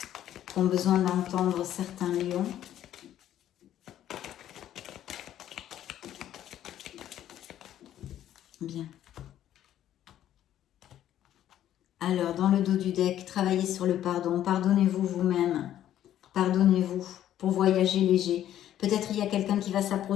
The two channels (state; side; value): quieter; right; 11.7 dB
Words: qu'ont besoin d'entendre certains lions. Bien. Alors, dans le dos du deck, travaillez sur le pardon. Pardonnez-vous vous-même. Pardonnez-vous pour voyager léger. Peut-être il y a quelqu'un qui va